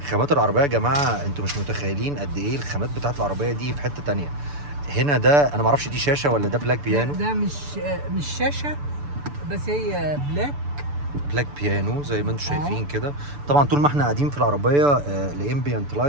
خامات العربيه يا جماعه انتوا مش متخيلين قد ايه الخامات بتاعه العربيه دي في حته تانية. هنا ده انا ما اعرفش دي شاشه ولا ده بلاك بيانو. ده مش شاشه، بس هي بلاك بيانو زي ما انتم شايفين كده. طبعا طول ما احنا قاعدين في العربيه الامبيانت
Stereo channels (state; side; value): late; left; 6.9 ms